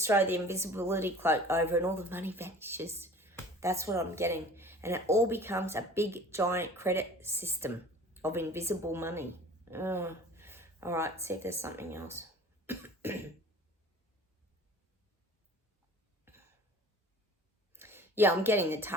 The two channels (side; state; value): both; normal; correlation 0.45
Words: throw the invisibility cloak over and all the money vanishes. That's what I'm getting. And it all becomes a big, giant credit system of invisible money. Oh. All right, see if there's something else. Yeah, I'm getting the